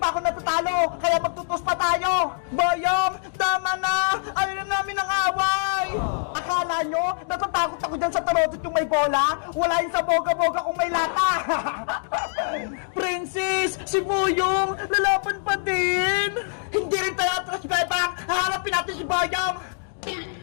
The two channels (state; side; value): silent; right; digital silence